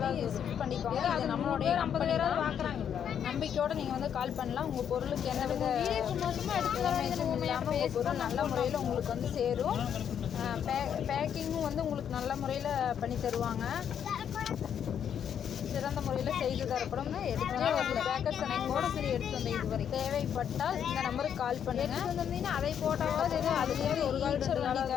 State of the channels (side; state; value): right; quieter; 8.6 dB